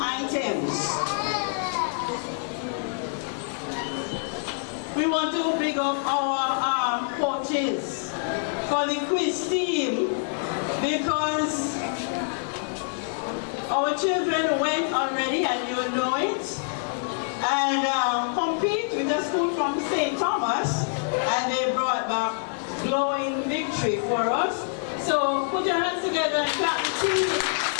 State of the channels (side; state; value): right; silent; digital silence